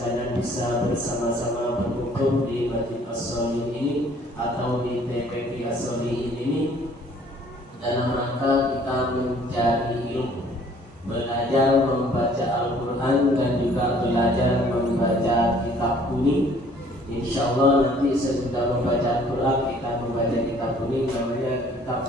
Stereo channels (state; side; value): normal; both; correlation 0.57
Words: bisa bersama-sama berkumpul di Masjid As-Sholihin ini atau di TPQ As-Sholihin ini dalam rangka kita mencari ilmu, belajar membaca Al-Quran dan juga belajar membaca kitab kuning. Insyaallah nanti sesudah membaca Al-Quran kita membaca kitab kuning namanya kitab